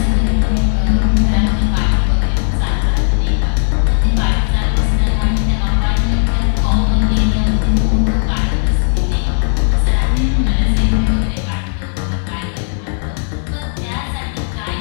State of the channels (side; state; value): right; silent; 67 dB below the other